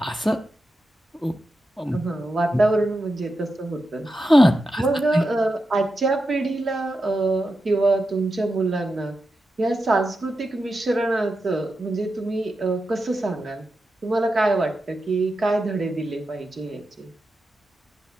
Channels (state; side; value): normal; both; correlation 0.89